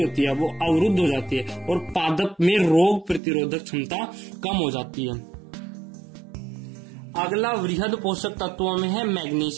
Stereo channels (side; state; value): left; drops out; at 3.2 s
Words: है वो अवरुद्ध हो जाती है और पादप में रोग प्रतिरोधक क्षमता कम हो जाती है। अगला वृहद पोषक तत्वों में है